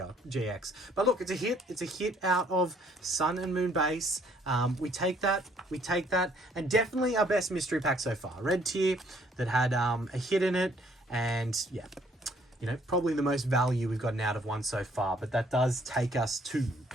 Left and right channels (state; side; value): normal; both; correlation 0.63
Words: But look, it's a hit. It's a hit out of Sun and Moon base. We take that. And definitely our best mystery pack so far. Red tier that had a hit in it. And yeah, you know, probably the most value we've gotten out of one so far. But that does take us to